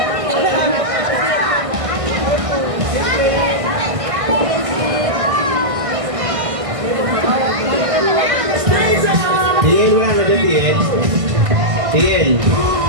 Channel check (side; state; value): left; late; 1.6 ms